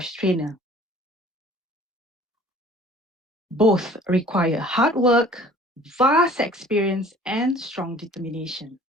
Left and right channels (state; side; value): normal; both; correlation 0.50